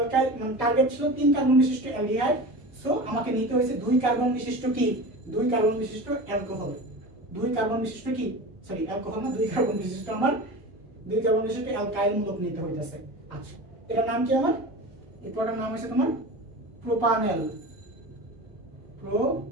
মানে টার্গেট ছিল 3 কার্বন বিশিষ্ট অ্যালডিহাইড, সো আমাকে নিতে হয়েছে 2 কার্বন বিশিষ্ট কি? 2 কার্বন বিশিষ্ট অ্যালকোহল। 2 কার্বন বিশিষ্ট কি? সরি অ্যালকোহল না, 2 কার্বন বিশিষ্ট আমার 2 কার্বন বিশিষ্ট অ্যালকাইল মূলক নিতে হইতাছে। আচ্ছা, এটার নাম কি আমার? এই পুরোটার নাম হচ্ছে তোমার প্রোপানেল।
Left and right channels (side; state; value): both; normal; correlation 0.32